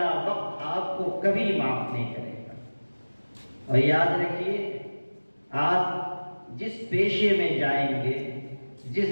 وقت آپ کو کبھی معاف نہیں کرے گا. اور یاد رکھیے, آپ جس پیشے میں جائیں گے,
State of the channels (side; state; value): both; inverted; correlation -1.00